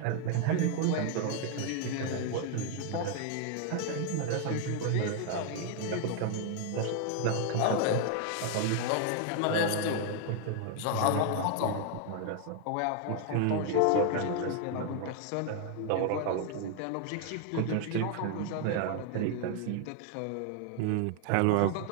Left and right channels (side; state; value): both; different; correlation 0.00